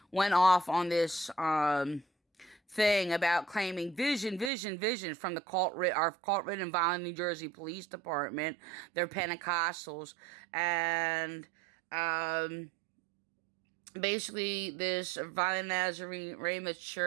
went off on this thing about claiming vision from the our cult-ridden Vineland, New Jersey Police Department. They're Pentecostals, and basically this Vineland Nazarene Ramoth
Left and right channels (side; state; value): left; drops out; at 4.5 s